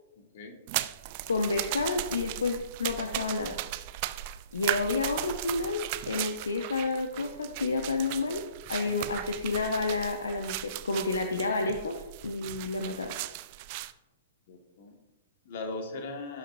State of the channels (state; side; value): inverted; both; correlation -0.54